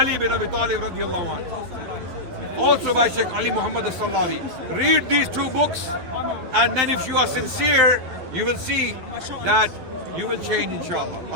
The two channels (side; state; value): left; late; 12 ms